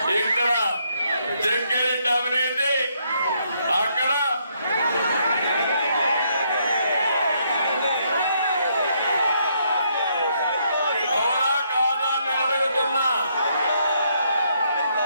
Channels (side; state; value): both; inverted; correlation -0.73